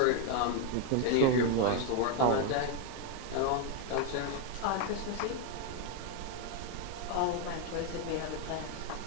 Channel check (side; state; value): both; different; correlation 0.01